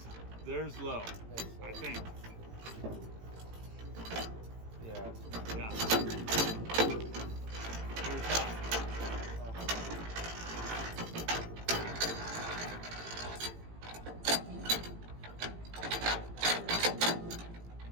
low. That's low. I think. Yeah. Yeah. Here's high.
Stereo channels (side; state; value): left; late; 18 ms